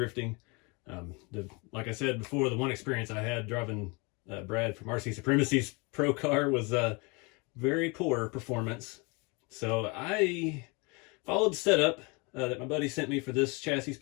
Like I said before, the one experience I had driving Brad from RC Supremacy's pro car was very poor performance. So I followed the setup that my buddy sent me for this chassis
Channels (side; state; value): right; quieter; 29.2 dB